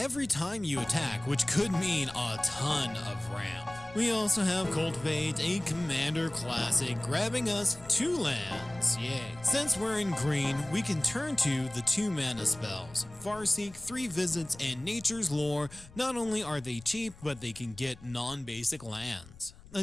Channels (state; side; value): noise; left; rumble, 20 dB below the sound